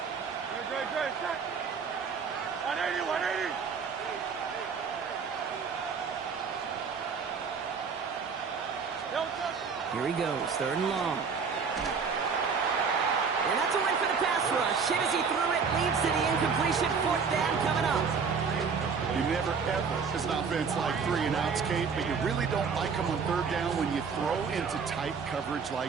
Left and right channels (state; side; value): quieter; left; 5.7 dB